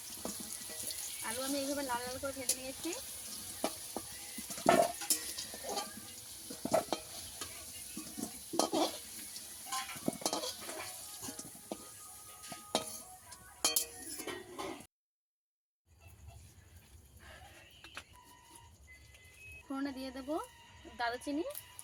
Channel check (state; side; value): identical; both; correlation 1.00